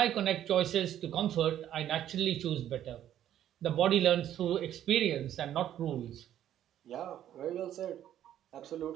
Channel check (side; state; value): left; quieter; 11.3 dB